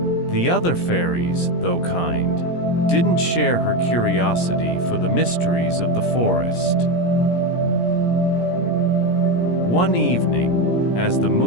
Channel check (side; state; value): right; late; 17 ms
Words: The other fairies, though kind, didn't share her curiosity for the mysteries of the forest. One evening, as the